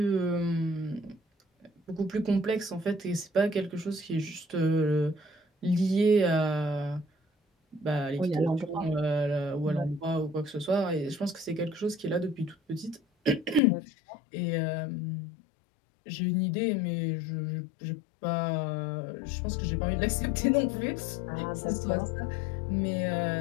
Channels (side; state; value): right; drops out; at 13.6 s